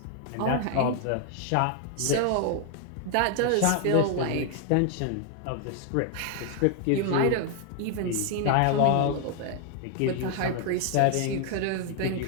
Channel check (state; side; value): different; both; correlation 0.00